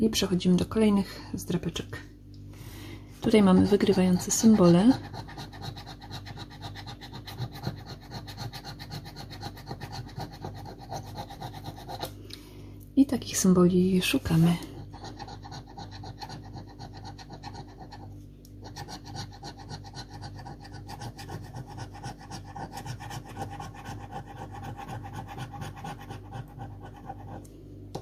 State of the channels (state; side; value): identical; both; correlation 1.00